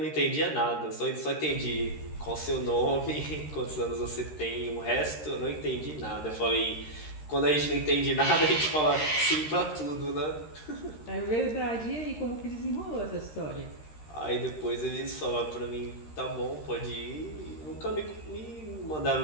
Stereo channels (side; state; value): right; late; 13 ms